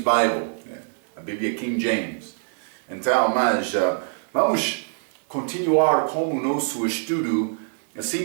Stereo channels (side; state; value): left; silent; digital silence